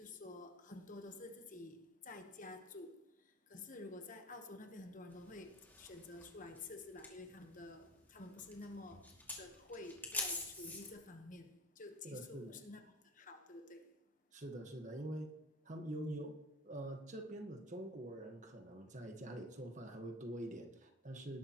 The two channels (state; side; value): normal; both; correlation 0.37